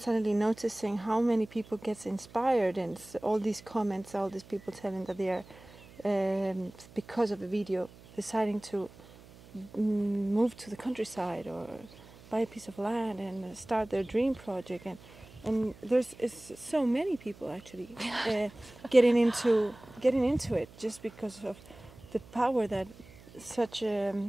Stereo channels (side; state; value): right; noise; hum, 21 dB below the sound